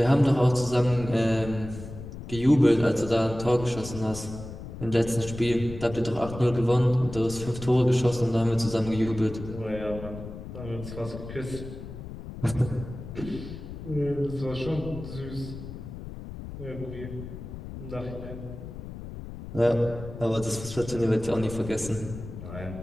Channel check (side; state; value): left; noise; rumble, 11 dB below the sound